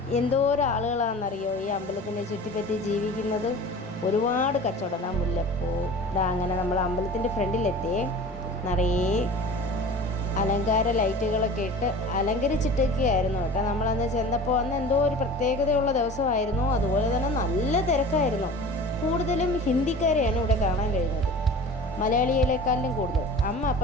എന്തോരം ആളുകളാണെന്നറിയോ ഈ അമ്പലത്തിനെ ചുറ്റിപ്പറ്റി ജീവിക്കുന്നത്. ഒരുപാട് കച്ചവടം. മുല്ലപ്പൂ. അങ്ങനെ നമ്മൾ അമ്പലത്തിൻ്റെ ഫ്രണ്ടിലെത്തിയേ. നിറയെ അലങ്കാര ലൈറ്റുകളൊക്കെ ഇട്ട് അലങ്കരിച്ചിട്ടൊക്കെയായിരുന്നു കേട്ടോ. നമ്മളന്ന് ചെന്നപ്പോൾ അന്ന് എന്തോ ഒരു പ്രത്യേകതയുള്ള ദിവസമായിരുന്നു. അതുപോലെ തന്നെ നല്ല തിരക്കായിരുന്നു. കൂടുതലും ഹിന്ദിക്കാരെയാണ് ഇവിടെ കാണാൻ കഴിഞ്ഞത്, മലയാളികളെക്കാളിലും കൂടുതൽ. അമ്മ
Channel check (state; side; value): normal; both; correlation 0.39